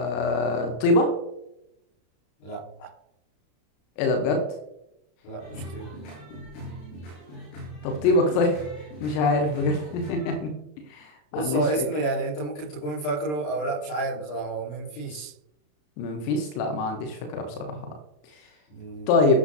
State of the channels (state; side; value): late; right; 33 ms